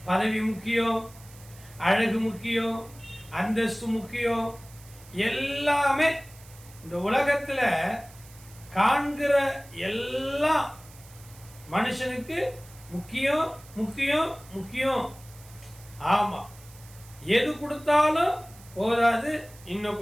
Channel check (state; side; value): noise; right; hiss, 22 dB below the sound